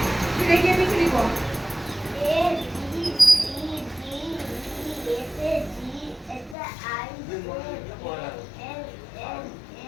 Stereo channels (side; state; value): right; drops out; at 6.6 s